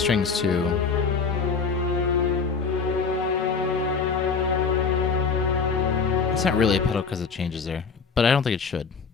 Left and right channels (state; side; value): quieter; right; 5.3 dB